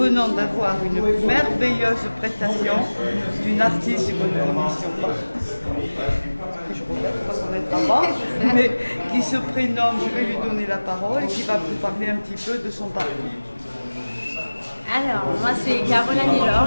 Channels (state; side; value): inverted; both; correlation -1.00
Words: d'avoir une merveilleuse prestation d'une artiste que nous ne connaissions pas, que je regrette parce qu'on est avant, mais qui se prénomme, je vais lui donner la parole et qui va vous parler un petit peu de son parcours. Alors, moi c'est Caroline Hilor,